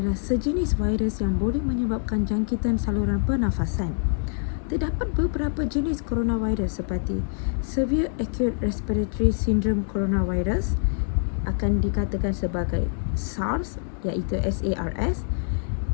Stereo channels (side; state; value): right; silent; 62 dB below the other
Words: sejenis virus yang boleh menyebabkan jangkitan saluran pernafasan. Terdapat beberapa jenis coronavirus seperti Severe Acute Respiratory Syndrome Coronavirus akan dikatakan sebagai SARS iaitu SARS,